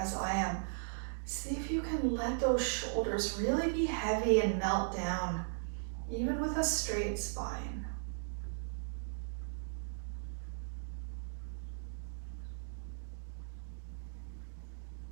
I am, see if you can let those shoulders really be heavy and melt down, even with a straight spine.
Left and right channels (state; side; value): silent; left; digital silence